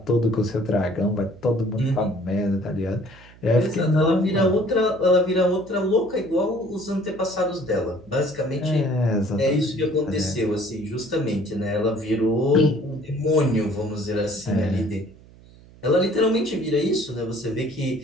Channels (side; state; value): right; noise; hum, 23 dB below the sound